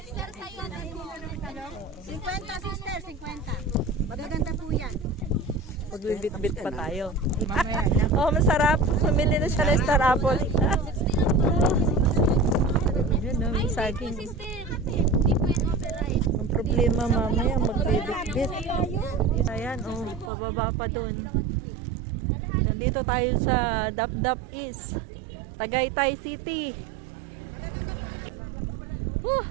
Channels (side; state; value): left; drops out; at 20.3 s